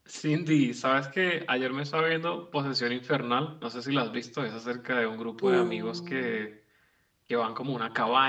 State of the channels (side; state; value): both; identical; correlation 1.00